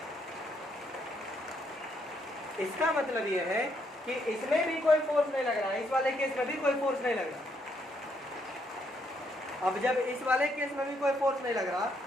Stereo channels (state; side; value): normal; both; correlation 0.74